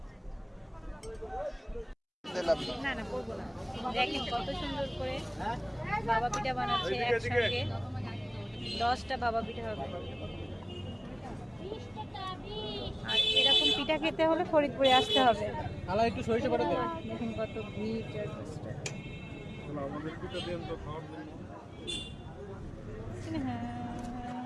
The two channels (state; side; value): identical; both; correlation 1.00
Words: না না করবো না। দেখেন কত সুন্দর করে ভাপা পিঠা বানাচ্ছে। একসঙ্গে 10টা ভাপা পিঠা হবে। আর এরকম পিঠা খেতে হলে ফরিদপুরে আসতে হবে। খালা একটু সরিষা বাটা দেন। দেখুন কত ভিড়। আমাদের পিঠা দেন তো খাওয়ার জন্য।